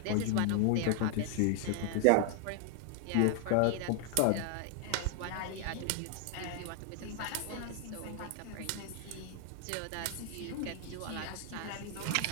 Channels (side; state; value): both; different; correlation 0.00